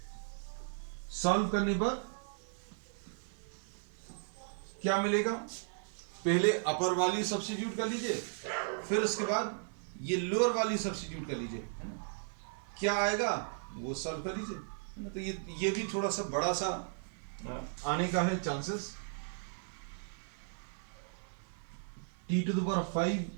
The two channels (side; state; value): left; silent; 54 dB below the other